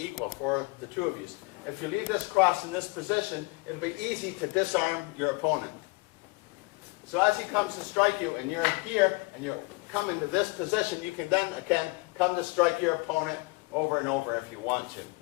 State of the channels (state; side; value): quieter; right; 25.8 dB